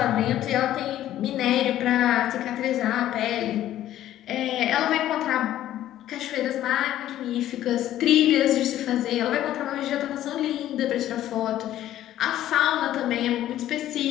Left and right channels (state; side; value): quieter; right; 12.9 dB